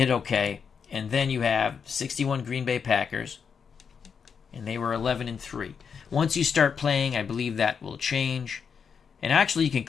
OK. And then you have 61 Green Bay Packers, and they were 11-3. Once you start playing, I believe that will change. And actually, you can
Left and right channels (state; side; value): quieter; right; 6.5 dB